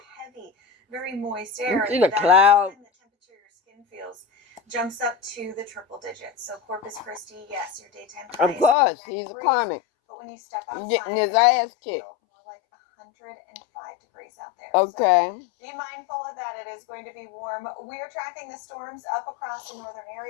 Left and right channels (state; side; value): drops out; right; at 8.8 s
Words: Heavy, very moist air. You see the cloud? The temperature your skin feels jumps up to the triple digits. So Corpus Christi, yes, your daytime high. Of course, he's a karmic. But when you step outside, getting his ass kicked. More like 105 degrees out there. Okay. So be mindful of that. It is going to be warm. We are tracking the storms up across the northern